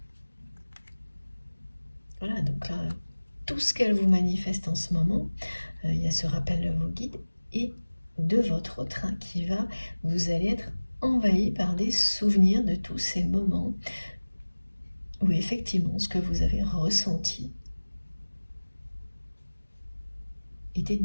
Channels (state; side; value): inverted; both; correlation -1.00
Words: Voilà, donc là, tout ce qu'elle vous manifeste en ce moment, il y a ce rappel de vos guides et de votre train qui va, vous allez être envahi par des souvenirs de tous ces moments où effectivement ce que vous avez ressenti était